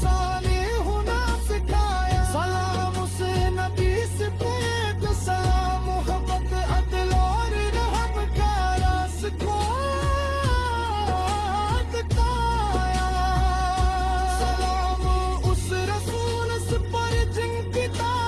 होना सिखाया। सलाम उस नबी से जो सलाम मोहब्बत अदल और रहम का रास्ता बताया। सलाम उस रसूल से पर जिनकी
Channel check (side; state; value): both; identical; correlation 1.00